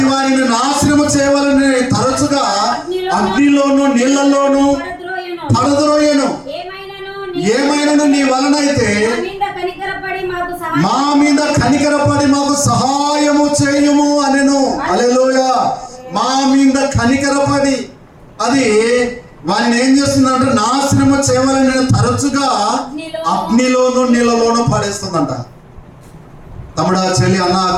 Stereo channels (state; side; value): identical; both; correlation 1.00